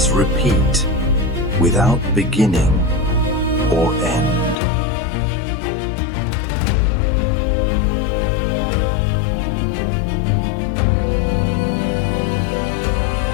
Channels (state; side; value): drops out; right; at 4.5 s